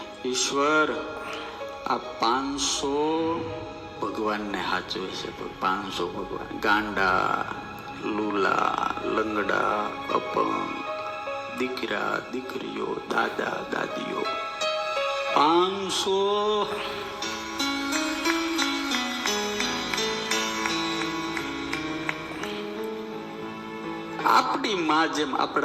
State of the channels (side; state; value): both; identical; correlation 1.00